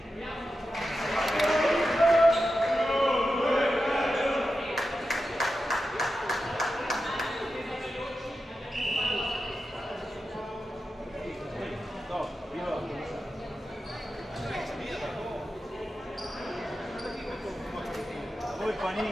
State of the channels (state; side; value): normal; both; correlation 0.91